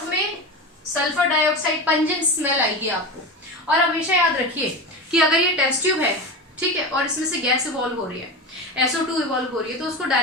में सल्फर डाइऑक्साइड, पंजेंट स्मेल आएगी आपको। और हमेशा याद रखिए कि अगर ये टेस्ट ट्यूब है, ठीक है, और इसमें से गैस इवॉल्व हो रही है, SO2 इवॉल्व हो रही है, तो उसको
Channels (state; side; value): normal; both; correlation 0.24